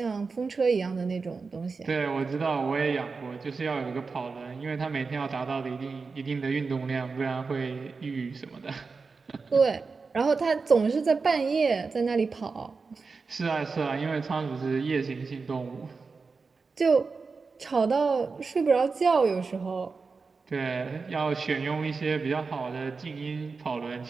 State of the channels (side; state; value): left; quieter; 4.5 dB